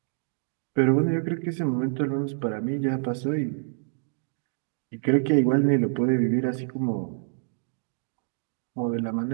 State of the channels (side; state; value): left; silent; digital silence